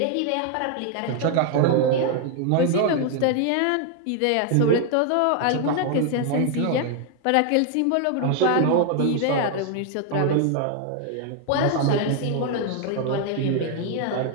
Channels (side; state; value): both; different; correlation 0.00